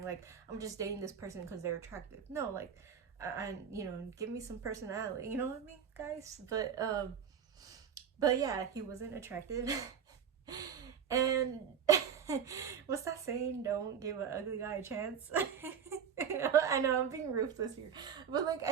Like, I'm just dating this person because they're attractive. No, like, I you know, give me some personality, you know what I mean, guys? But yeah, he wasn't attractive. And what's that saying? Don't give an ugly guy a chance. I know I'm being ruthless here, but like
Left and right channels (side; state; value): left; quieter; 7.6 dB